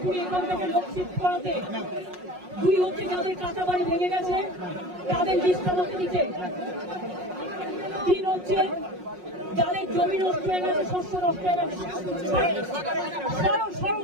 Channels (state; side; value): late; left; 5.5 ms